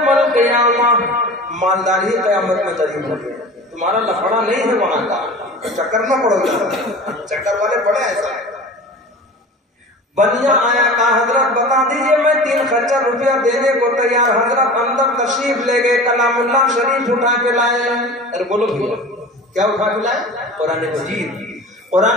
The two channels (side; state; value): both; normal; correlation 0.37